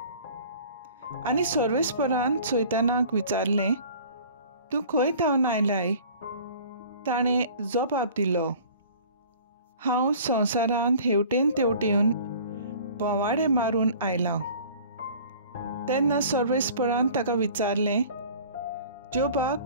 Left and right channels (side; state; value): both; inverted; correlation -0.47